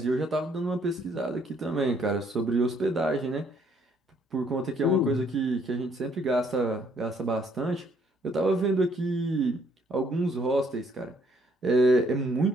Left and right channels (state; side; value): normal; both; correlation 0.67